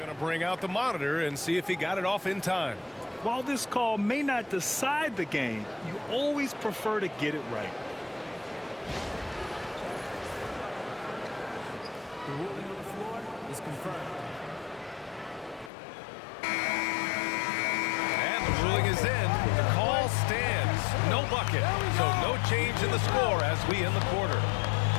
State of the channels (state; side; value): drops out; right; at 15.7 s